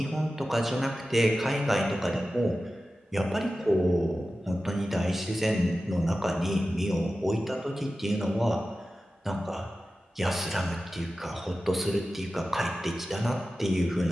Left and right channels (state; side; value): normal; both; correlation 0.94